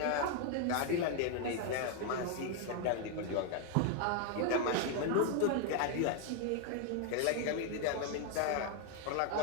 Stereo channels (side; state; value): both; different; correlation 0.01